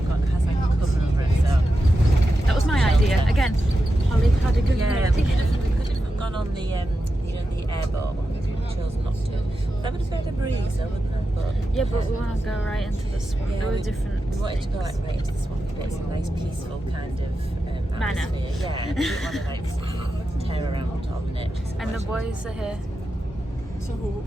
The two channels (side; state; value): both; normal; correlation 0.90